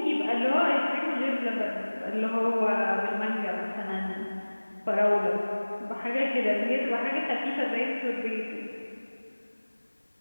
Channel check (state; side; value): inverted; both; correlation -1.00